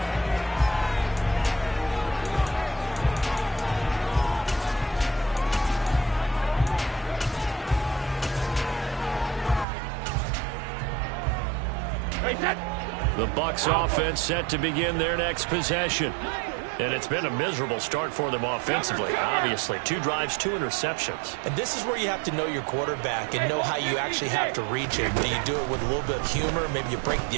The Bucs offense set to begin their next possession. And it's been a miserable start for them offensively, obviously. 2 drives, 2 interceptions. And this is where you have to know your quarterback and know how you actually have to reach him. Do you do it with a little bit of humor? Maybe you break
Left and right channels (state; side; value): drops out; left; at 9.7 s